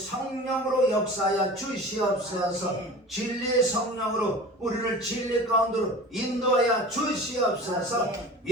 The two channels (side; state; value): both; normal; correlation 0.37